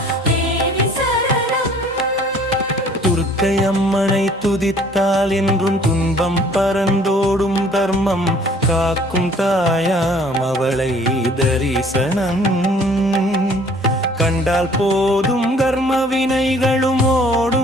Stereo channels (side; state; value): both; normal; correlation 0.55